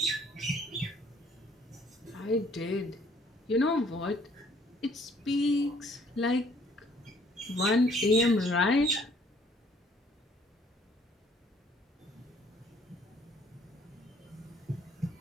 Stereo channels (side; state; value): both; normal; correlation 0.61